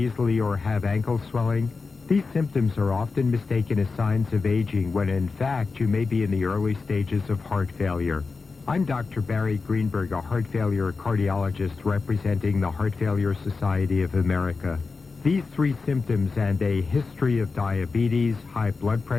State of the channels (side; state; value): right; quieter; 4.4 dB